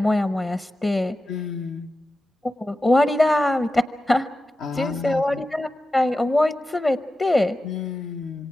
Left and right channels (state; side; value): normal; both; correlation 0.93